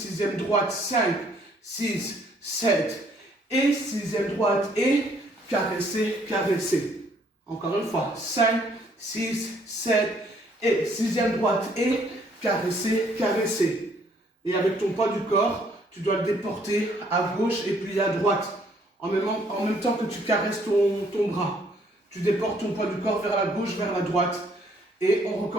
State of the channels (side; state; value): both; normal; correlation 0.65